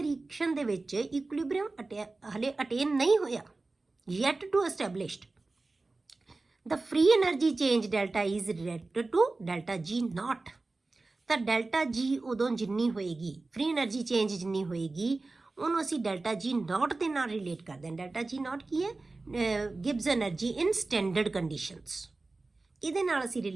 ਰਿਐਕਸ਼ਨ ਦੇ ਵਿੱਚ ਇਕੁਇਲਿਬਰੀਅਮ ਹਲੇ ਅਟੇਨ ਨਹੀਂ ਹੋਇਆ, yet to established, the free energy change delta is related to delta G not. ਤਾਂ ਡੈਲਟਾ ਜੀ ਉਦੋਂ ਜਿੰਨੀ ਹੋਏਗੀ, ਫ੍ਰੀ એનર્ਜੀ ਚੇਂਜ ਜਿੰਨੀ ਹੋਏਗੀ, ਉਹਨੂੰ ਅਸੀਂ ਡੈਲਟਾ ਜੀ ਨਾਟ ਦੇ ਨਾਲ ਰਿਲੇਟ ਕਰਦੇ ਹਾਂ। ਡੈਲਟਾ ਜੀ ਨਾਟ ਕੀ ਹੈ? ਗਿਬਸ એનર્ਜੀ ਇਨ ਸਟੈਂਡਰਡ ਕੰਡੀਸ਼ਨਸ, ਇਹਦੇ ਨਾਲ ਅਸੀਂ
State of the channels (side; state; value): left; quieter; 3.4 dB